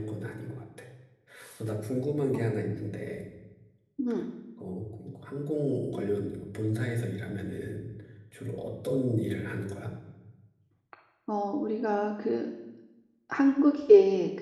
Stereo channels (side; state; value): both; identical; correlation 1.00